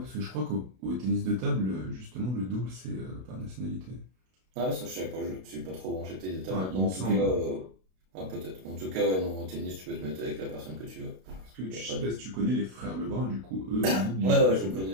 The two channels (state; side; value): late; left; 32 ms